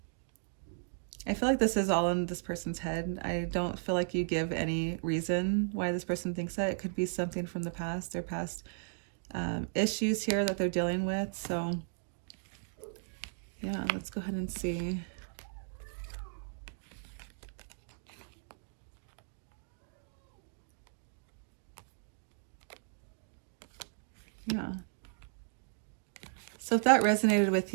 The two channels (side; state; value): left; silent; digital silence